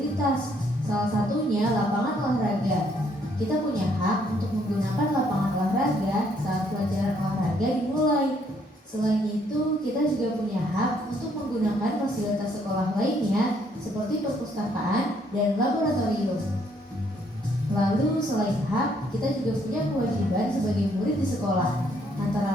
salah satunya lapangan olahraga. Kita punya hak untuk menggunakan lapangan olahraga saat pelajaran olahraga dimulai. Selain itu, kita juga punya hak untuk menggunakan fasilitas sekolah lainnya seperti perpustakaan dan laboratorium. Lalu selain hak, kita juga punya kewajiban sebagai murid di sekolah,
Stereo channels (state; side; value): normal; both; correlation 0.68